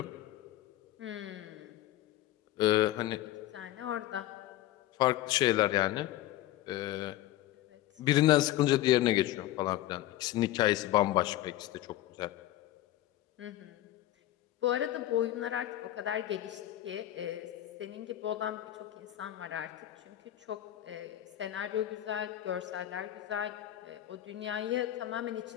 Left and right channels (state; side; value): quieter; right; 14.3 dB